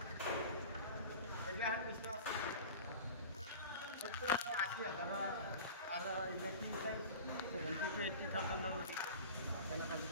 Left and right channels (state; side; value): inverted; both; correlation -0.36